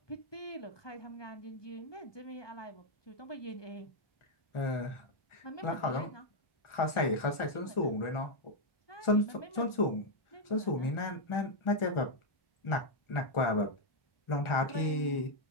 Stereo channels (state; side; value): late; right; 1.4 ms